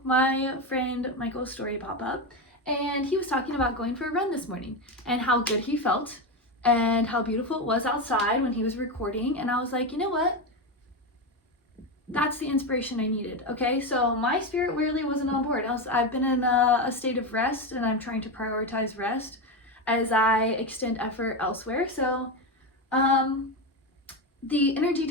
my friend Michael's story pop up, and he was talking about going for a run this morning and how good he felt and how beautiful it was outside when he was recording. And I was like, you know what? That's the inspiration I needed. Okay, so my spirit really wasn't on board. I've been in a state of rest, and I'm trying to prioritize rest as I extend effort elsewhere. So the energy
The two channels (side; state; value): both; normal; correlation 0.14